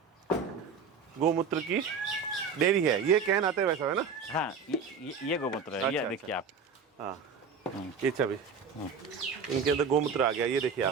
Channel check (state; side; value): quieter; left; 5.6 dB